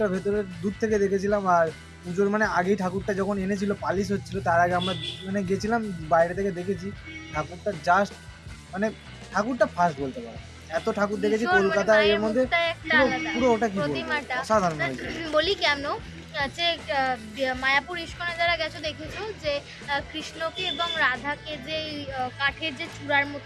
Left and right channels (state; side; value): identical; both; correlation 1.00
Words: ভেতরে দূর থেকে দেখেছিলাম। আর পুজোর মানে আগেই ঠাকুরটা যখন এনেছিল পালিশ হচ্ছিল, তার আগে আমরা মানে গেছিলাম, বাইরে থেকে দেখেছি ঠাকুরটা, জাস্ট মানে ঠাকুরটা ফার্স্ট বলতে পারো, এত ঠাকুর দেখেছি কলকাতা, এর মধ্যে পুরো ওটা কি বলবো, অসাধারণ হয়েছে। বলি কেন, যে মায়াপুর ইস্কনে যারা গেছো দেখেছো যে কৃষ্ণকে এবং রাধাকে যে কাঠের যে চূড়ার